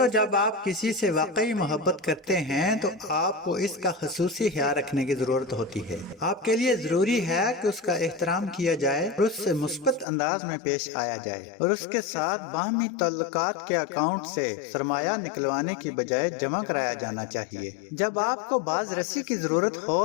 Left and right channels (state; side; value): drops out; right; at 10.1 s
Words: جب آپ کسی سے واقعی محبت کرتے ہیں تو آپ کو اس کا خصوصی خیال رکھنے کی ضرورت ہوتی ہے۔ آپ کے لیے ضروری ہے کہ اس کا احترام کیا جائے اور اس سے مثبت انداز میں پیش آیا جائے، اور اس کے ساتھ باہمی تعلقات کے اکاؤنٹ سے سرمایہ نکلوانے کی بجائے جمع کرایا جانا چاہیے۔ جب آپ کو باز رسی کی ضرورت ہو